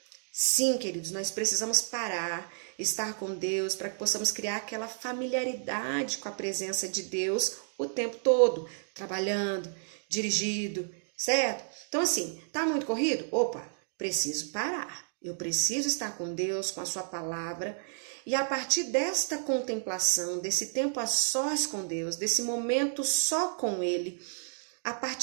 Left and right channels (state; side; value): silent; left; digital silence